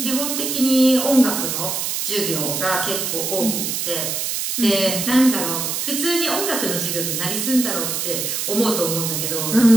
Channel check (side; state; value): right; noise; hiss, 2 dB below the sound